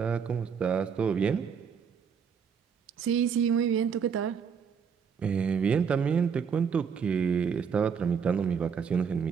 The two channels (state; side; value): quieter; left; 6.7 dB